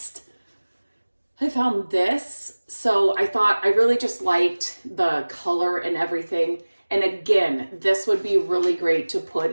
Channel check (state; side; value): inverted; both; correlation -1.00